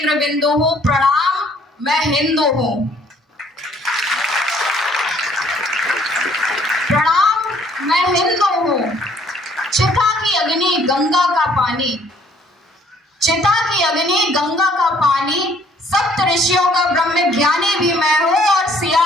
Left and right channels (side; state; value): both; normal; correlation 0.61